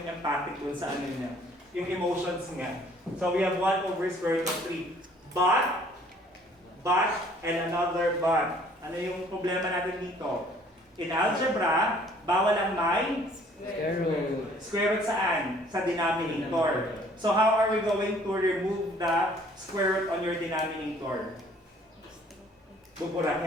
empathic dun sa ano niya, yung emotions nga. So we have 1 over square root of 3. But, and another but. Ano yung problema natin dito? In algebra, bawal ang may Square root. square root saan? Sa denominator. So how are we going to remove the square root on your denominator?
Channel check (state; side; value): normal; both; correlation 0.57